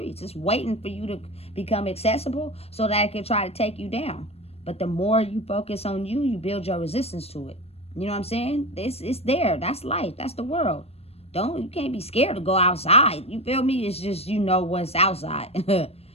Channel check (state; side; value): late; right; 0.29 ms